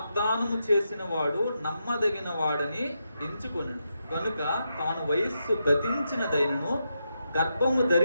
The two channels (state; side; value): inverted; both; correlation -0.85